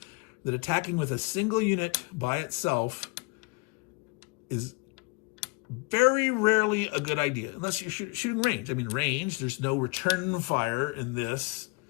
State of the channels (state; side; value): quieter; right; 28.7 dB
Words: attacking with a single unit by itself is very rarely a good idea, unless you're shooting range. I mean, range, there's no return fire in this.